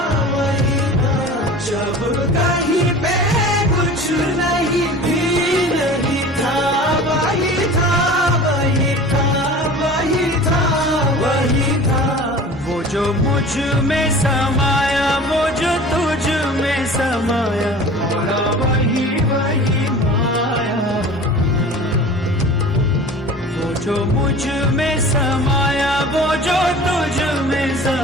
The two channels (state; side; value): normal; both; correlation 0.40